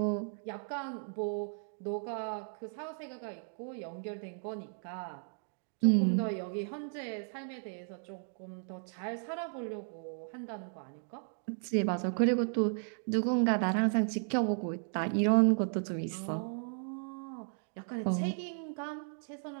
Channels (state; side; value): silent; left; 54 dB below the other